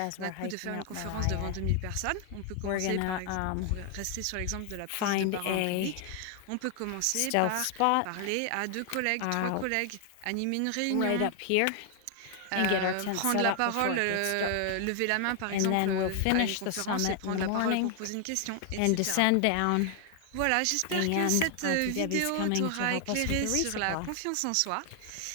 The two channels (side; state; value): both; different; correlation 0.00